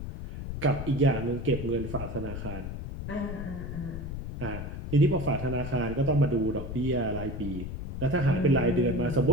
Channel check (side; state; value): left; noise; rumble, 7 dB below the sound